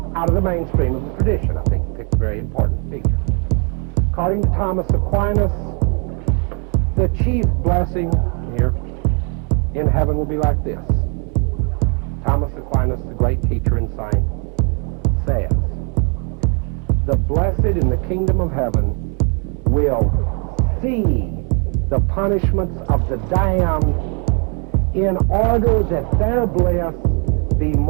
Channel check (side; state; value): left; quieter; 37.7 dB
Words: out of the mainstream of the tradition. I think he picked a very important figure. According to Thomas Aquinas, the chief blessing here in heaven will be like this. Thomas Aquinas, the great teacher and saint, says, "The blessed in the kingdom of heaven will see the punishments of the damned in order that their bliss be